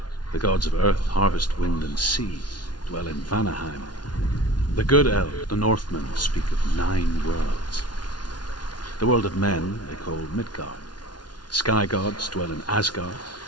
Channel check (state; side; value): late; right; 0.70 ms